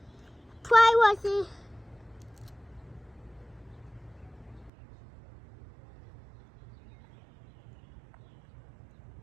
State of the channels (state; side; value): drops out; left; at 4.7 s